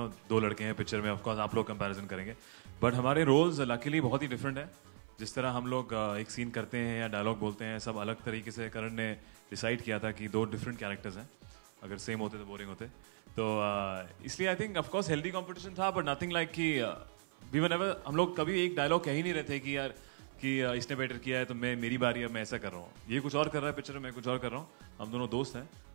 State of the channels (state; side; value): silent; left; 53 dB below the other